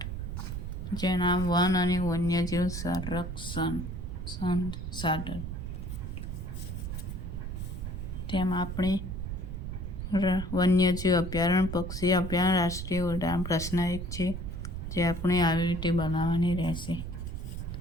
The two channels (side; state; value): right; noise; rumble, 5 dB below the sound